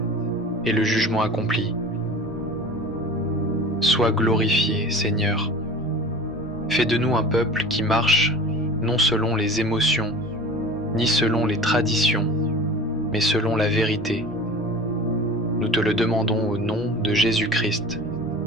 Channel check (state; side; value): normal; both; correlation 0.38